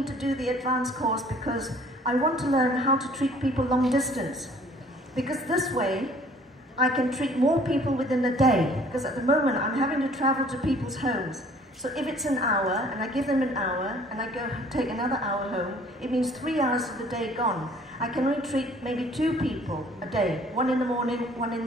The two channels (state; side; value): normal; both; correlation 0.55